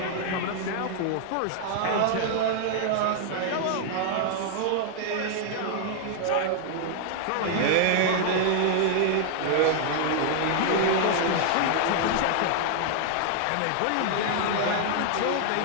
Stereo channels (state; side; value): different; both; correlation 0.00